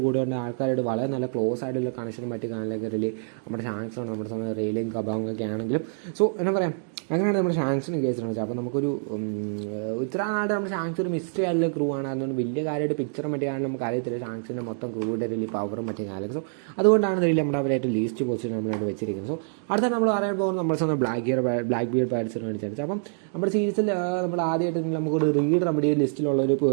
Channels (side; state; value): left; silent; digital silence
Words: കൂടെ കൊണ്ട് ആൾക്കാരോട് വളരെ നല്ല ക്ലോസ് ആയിട്ടുള്ള കണക്ഷനും മറ്റു കാണാനൊക്കെ നമ്മുടെ ഷാങ്ക്സാണ്. നമ്മുടെ സ്വന്തം റെയിലും കബാങ്ങൊക്കെ ആണെങ്കിലും. സോ എന്താ പറയുക, അങ്ങനെയാണ് നമ്മുടെ ഷാങ്ക്സിന് കേസിലാണ് വെച്ചാൽ. അപ്പോൾ നമുക്കൊരു ഇത്ര നാട് നമ്മുടെ ഷാങ്ക്സ് ഒരു മിസ്റ്ററി ആയിട്ടുള്ള ക്രൂ ആണ്. അതുകൊണ്ട് വലിയ കാര്യമായിട്ട് പിക്ചറും മറ്റേ കാണാൻ നമുക്ക് അറിയത്തില്ല ഷാങ്ക്സിൻ്റെ മൊത്തം ക്രൂവിൻ്റെ വലിയ പവറും മറ്റേ കാലം. സോ അതുകൊണ്ടാണ് ഇതിൽ നമ്മുടെ അവരായിട്ട് ലീസ്റ്റ് പൊസിഷൻ നമ്മളായിട്ട് വെച്ചിരിക്കുന്നത്. സോ അടുത്ത നമ്മൾ പറയാൻ പോകുന്നത് നമ്മുടെ സ്വന്തം ബ്ലാക്ക് ബിയർ പൈററ്റ്സിന് വേണ്ടിയിട്ടാണ്. അപ്പം നമ്മുടെ സീരീസിൽ നമ്മൾ ആദ്യമായിട്ട് നമുക്കൊരു റീഡർ നമ്മുടെ ഈ ലിസ്റ്റിലുള്ള ഒരു